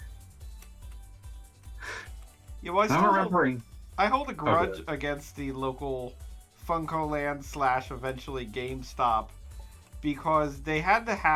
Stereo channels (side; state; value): both; identical; correlation 1.00